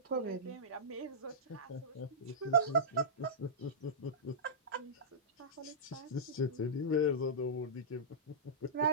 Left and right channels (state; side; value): normal; both; correlation -0.17